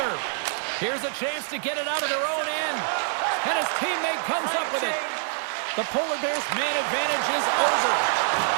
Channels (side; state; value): left; silent; digital silence